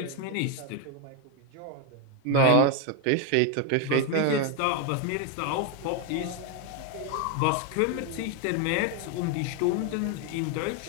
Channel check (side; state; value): both; different; correlation 0.01